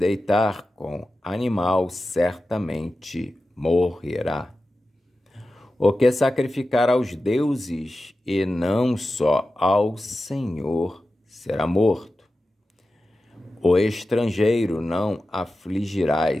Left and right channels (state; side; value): normal; both; correlation 0.93